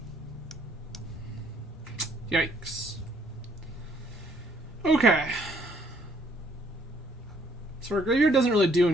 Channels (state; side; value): normal; both; correlation 0.65